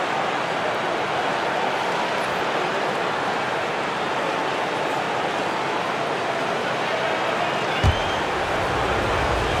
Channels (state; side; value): identical; both; correlation 1.00